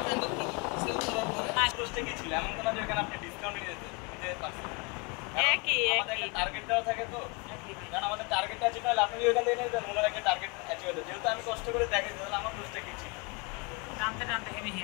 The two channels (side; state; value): right; quieter; 29.9 dB